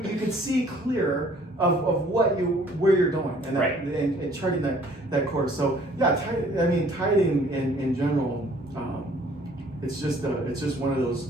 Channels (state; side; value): normal; both; correlation 0.57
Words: could see clear of where you're going, and and charting that course. So yeah, tithing in general. It's just one of those.